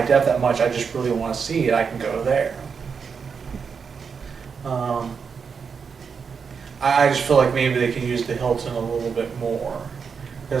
def that much. I just really want to see it. I can go there. I just feel like maybe they can use the Hilton a little bit more,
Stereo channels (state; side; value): quieter; left; 6.0 dB